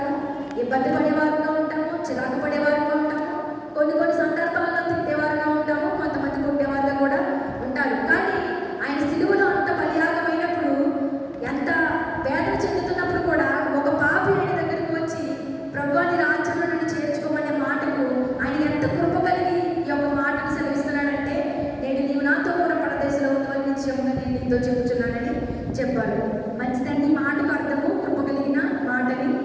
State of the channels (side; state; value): both; identical; correlation 1.00